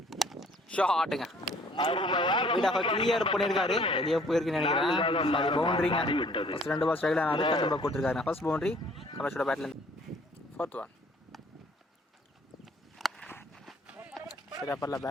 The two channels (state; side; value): normal; both; correlation 0.57